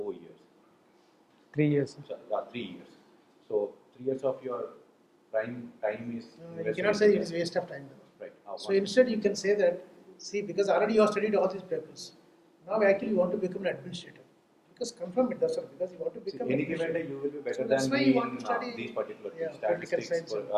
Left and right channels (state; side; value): identical; both; correlation 1.00